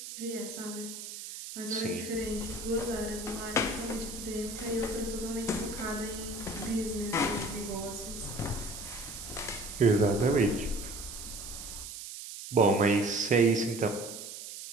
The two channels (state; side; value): noise; right; hiss, 10 dB below the sound